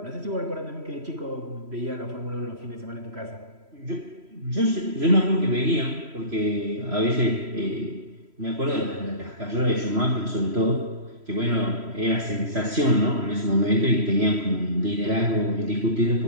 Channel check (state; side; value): late; left; 3.1 ms